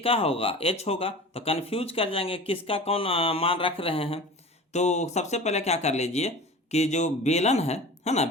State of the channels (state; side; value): normal; both; correlation 0.37